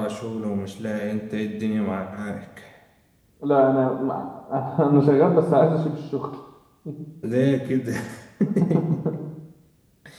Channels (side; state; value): both; identical; correlation 1.00